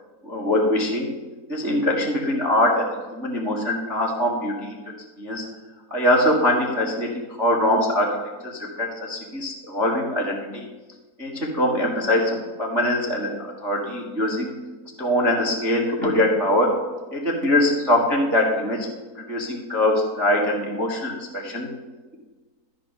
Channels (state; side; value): late; left; 3.9 ms